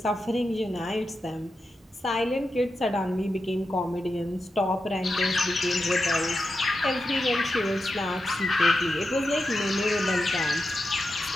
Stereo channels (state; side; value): normal; both; correlation 0.89